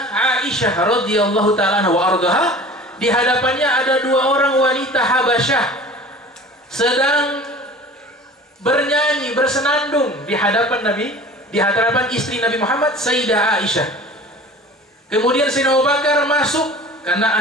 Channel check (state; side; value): normal; both; correlation 0.41